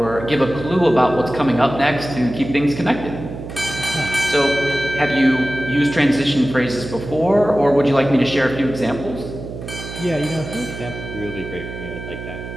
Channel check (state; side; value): noise; right; hum, 10 dB below the sound